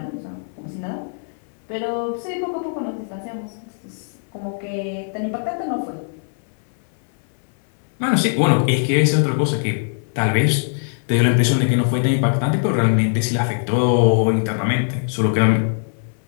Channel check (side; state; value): right; silent; 61 dB below the other